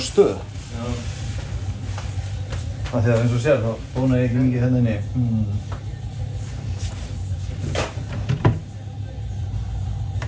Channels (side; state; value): both; identical; correlation 1.00